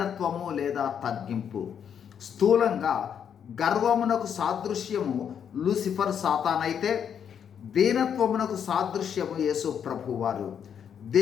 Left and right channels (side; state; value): right; quieter; 8.1 dB